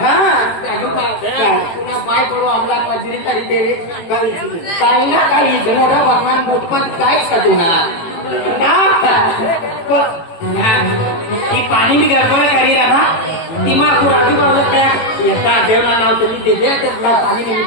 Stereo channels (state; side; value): late; right; 18 ms